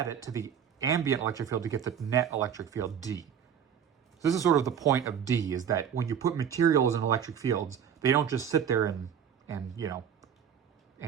it to the ambient electric field to get the net electric field, D. So this is sort of the point of D, is that when you put materials in electric fields, they don't just sit there and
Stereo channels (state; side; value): quieter; left; 8.3 dB